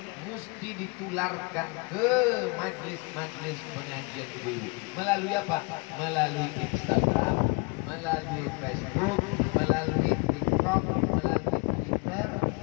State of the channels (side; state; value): right; quieter; 30.6 dB